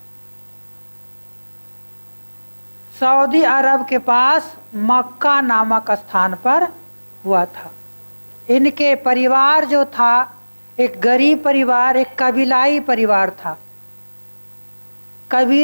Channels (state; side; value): inverted; both; correlation -1.00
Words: अरब के पास मक्का नामक स्थान पर हुआ था। इनके परिवार जो था एक गरीब परिवार, एक कबीलाई परिवार था।